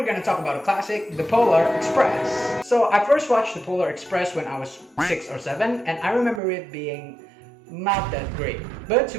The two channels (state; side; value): drops out; left; at 6.4 s